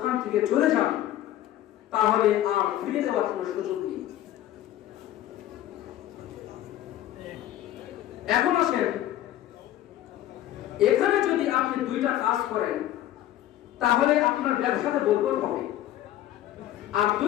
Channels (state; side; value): quieter; right; 13.1 dB